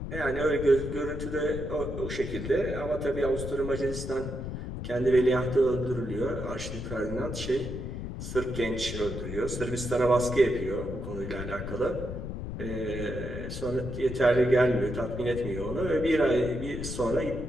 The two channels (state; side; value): noise; left; rumble, 7 dB below the sound